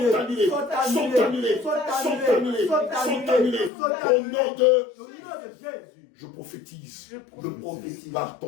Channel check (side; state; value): right; drops out; at 3.7 s